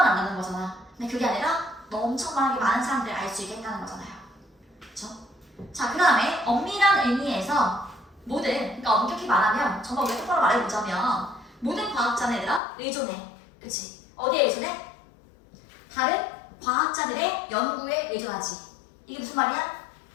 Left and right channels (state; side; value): drops out; right; at 12.6 s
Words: 안 하는 거잖아. 근데 그게 아니라 엄청 많은 사람들을 알 수 있게 했다는 거잖아요. 그쵸? 자, 그 다음에 엄밀한 의미에서 모든, 그러니까 엄격히 말하면 정말 우리가 똑바로 말해보자면 모든 과학자는 얘들아 의존해. 그치? 어디에 의존해? 다른 과학자들의 연구에 의존하지. 이게 무슨 말이야?